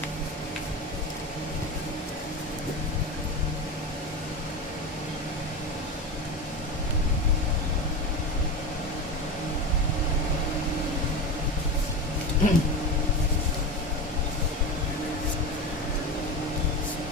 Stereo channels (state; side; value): normal; both; correlation 0.23